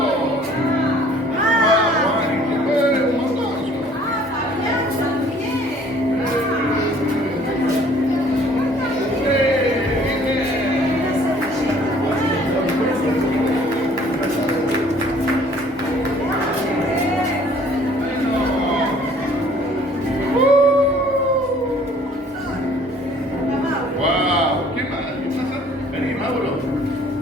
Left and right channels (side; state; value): both; normal; correlation 0.56